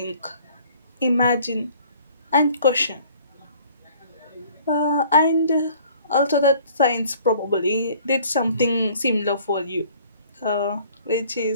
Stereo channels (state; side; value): inverted; both; correlation -0.54